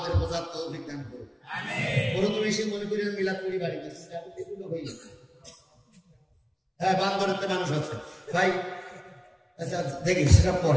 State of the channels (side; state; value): both; identical; correlation 1.00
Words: বোঝার তৌফিক দান করুন। প্রথমে এসে মনে করি মিলাদ করি বাড়িতে, এগুলো হয়ে যায়। হ্যাঁ, বান্দরের মানুষ আছে ভাই, আচ্ছা দেখি সেটা